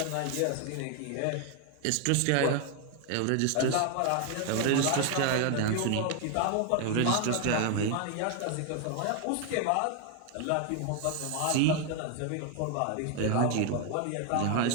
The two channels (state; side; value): different; both; correlation 0.01